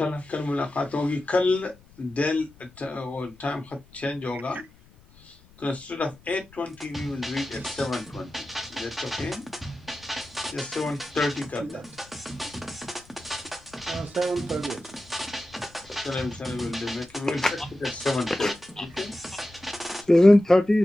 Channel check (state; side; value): noise; left; rumble, 26 dB below the sound